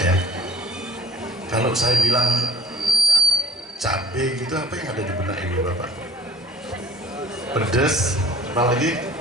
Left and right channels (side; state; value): both; normal; correlation 0.54